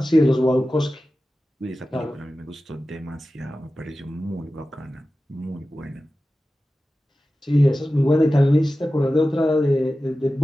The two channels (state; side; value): normal; both; correlation 0.95